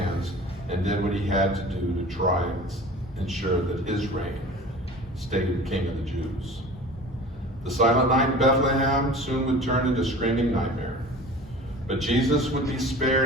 and did what he had to do to try and ensure that his reign stayed king of the Jews. The silent night in Bethlehem soon would turn into a screaming nightmare. But Jesus would be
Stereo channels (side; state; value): both; normal; correlation 0.40